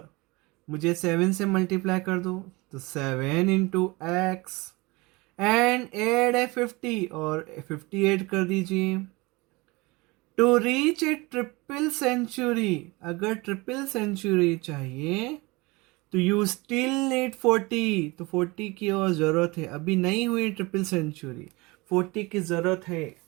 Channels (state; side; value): quieter; left; 24.2 dB